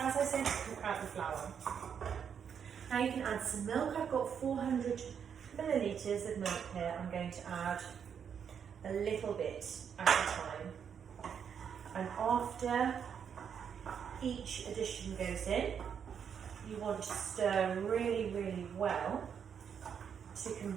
I said, to cook out the flour. Now you can add some milk. I've got 400 millilitres of milk here. I'm going to add a little bit at a time, and after each addition goes in, you want to stir really well to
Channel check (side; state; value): left; quieter; 7.6 dB